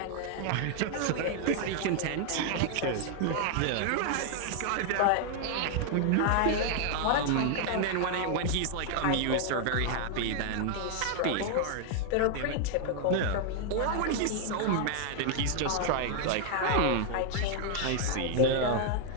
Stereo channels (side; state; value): both; different; correlation 0.00